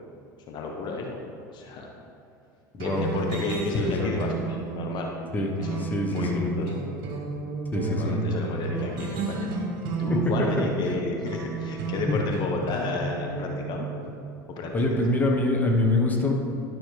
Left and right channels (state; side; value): normal; both; correlation 0.33